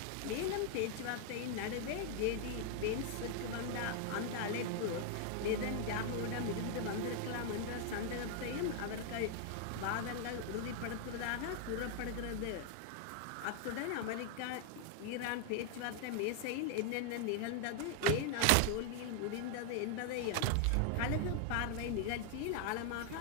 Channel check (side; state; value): both; different; correlation 0.00